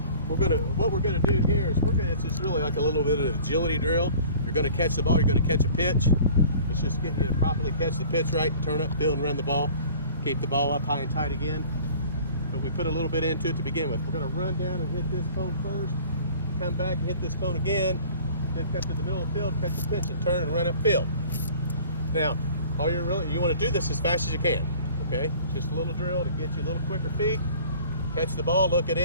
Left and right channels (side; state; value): both; inverted; correlation -0.47